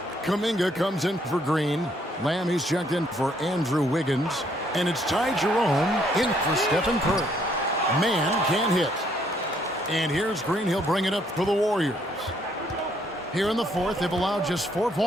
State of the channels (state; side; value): normal; both; correlation 0.68